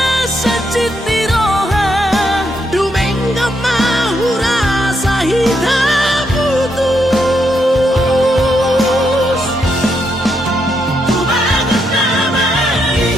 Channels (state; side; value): normal; both; correlation 0.79